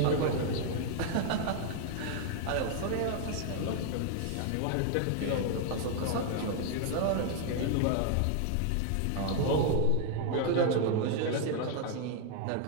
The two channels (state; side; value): different; both; correlation 0.00